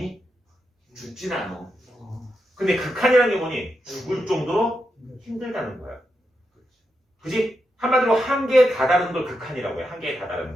죽진 않아. 근데 극한이라는 게 뭐니? 죽을 정도로 힘들다는 거야. 그지? 한마디로 한계에 다다른 걸 극한이라고 해. 한계에 다다른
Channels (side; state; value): both; normal; correlation 0.86